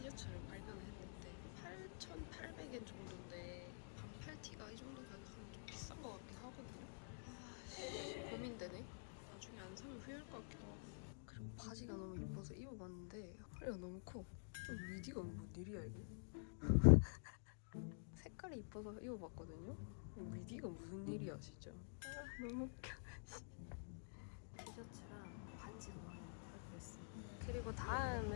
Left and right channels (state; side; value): silent; right; digital silence